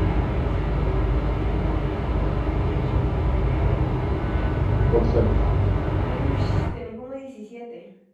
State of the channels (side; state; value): both; identical; correlation 1.00